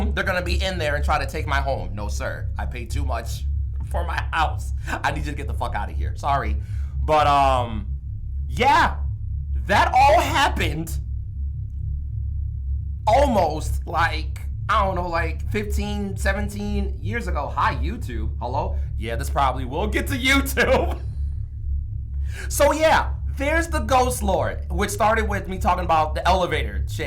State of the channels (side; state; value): both; identical; correlation 1.00